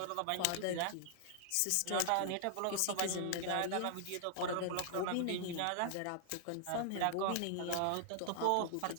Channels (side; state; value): both; different; correlation -0.01